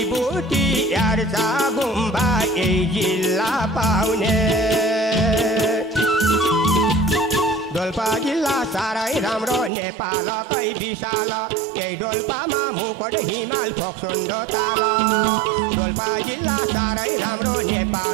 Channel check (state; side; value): drops out; left; at 9.7 s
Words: यार्चा गुम्बा यही जिल्ला पाउने डोल्पा जिल्ला साह्रै राम्रो नेपालकै विशाल यही डोल्पामा मुकुट हिमाल फोक्सोन्डो ताल डोल्पा जिल्ला साह्रै राम्रो